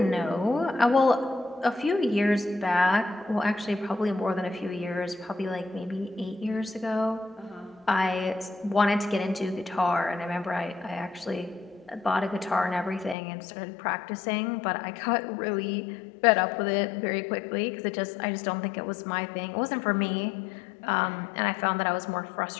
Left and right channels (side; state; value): right; drops out; at 13.2 s